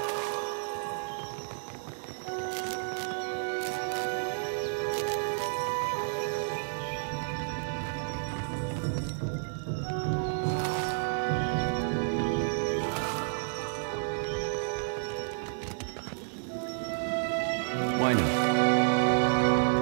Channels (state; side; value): silent; left; digital silence